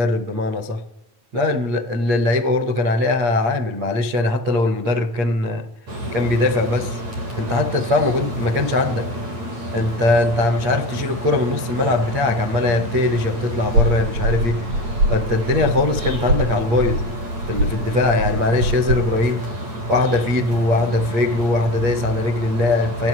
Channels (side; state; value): left; late; 8.6 ms